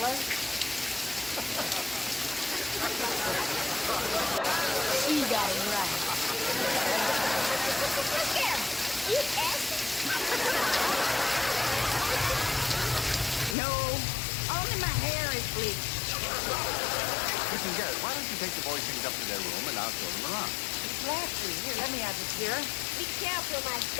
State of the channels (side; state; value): right; drops out; at 13.6 s